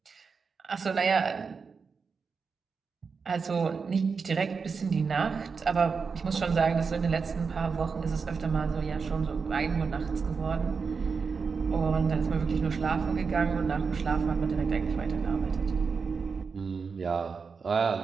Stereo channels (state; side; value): quieter; left; 5.3 dB